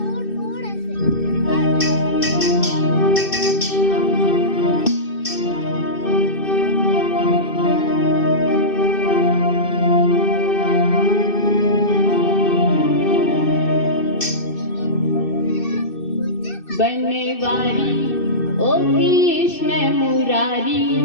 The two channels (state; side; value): late; right; 2.6 ms